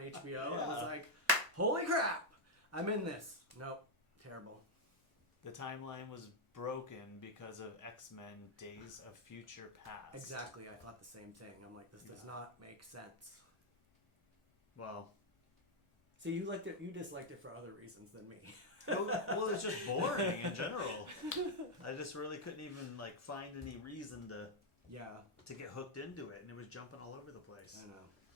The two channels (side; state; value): both; normal; correlation -0.01